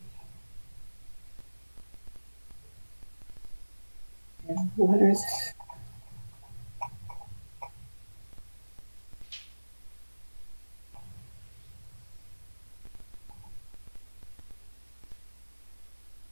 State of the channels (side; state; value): both; inverted; correlation -1.00